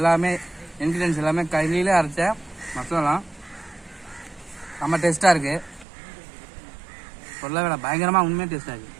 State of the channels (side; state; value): left; drops out; at 5.9 s